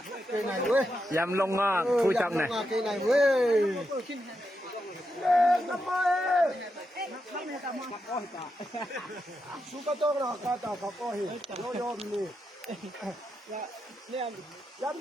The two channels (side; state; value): both; normal; correlation 0.85